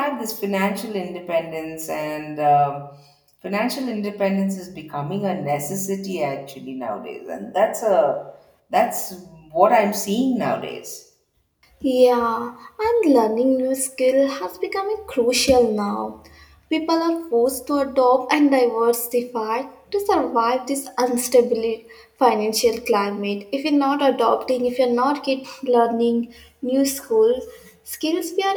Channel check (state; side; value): identical; both; correlation 1.00